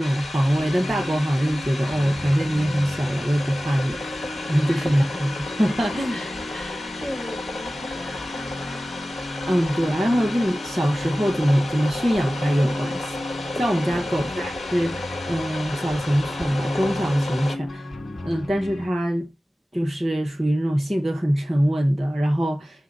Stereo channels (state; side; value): normal; both; correlation 0.96